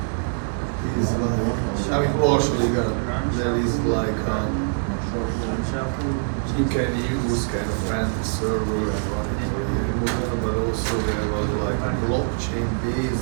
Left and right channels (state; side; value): silent; left; digital silence